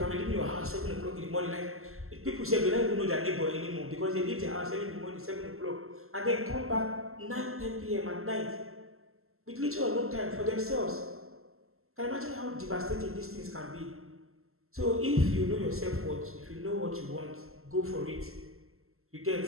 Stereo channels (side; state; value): left; late; 0.62 ms